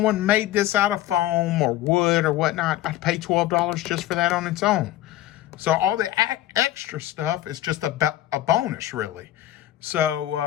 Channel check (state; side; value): quieter; right; 14.1 dB